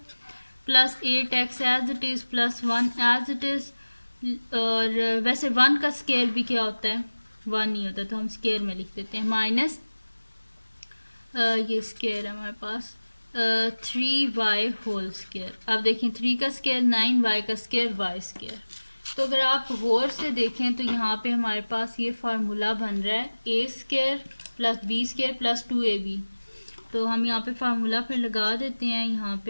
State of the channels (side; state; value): both; inverted; correlation -1.00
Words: plus 8x as it is plus 1 as it is. और वैसे 1 का स्केयर भी क्या होता है? 1 नहीं होता, तो हम स्केयर में लिख देते हैं माइनस ये स्केयर है हमारे पास 3y होल स्केयर। अब देखें 3 का स्केयर 9, y का स्केयर y स्केयर। तो अगर आप गौर से देखें तो यहाँ पे हमारे पास ये फार्मूला बन रहा है a square plus b square plus 2ab। तो हम यहाँ पे फार्मूला फिर लगा देते हैं। यहाँ